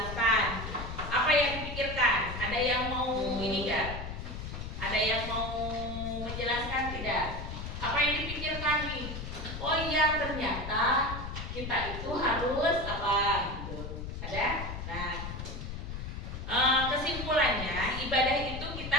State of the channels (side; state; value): left; noise; rumble, 7 dB below the sound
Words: Apa yang dipikirkan? Ada yang mau ini enggak? Ada yang mau menjelaskan tidak? Apa yang dipikirkan nih? Oh iya, ternyata kita itu harus apa gitu. Ada? Nah, kesimpulannya ibadah itu kita